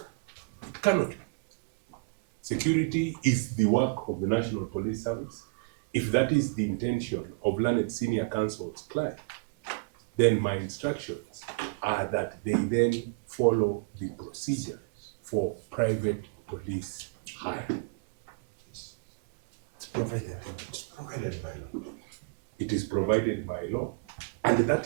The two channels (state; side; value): quieter; left; 31.7 dB